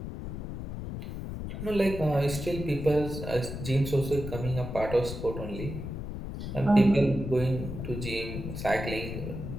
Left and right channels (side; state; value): left; noise; rumble, 7 dB below the sound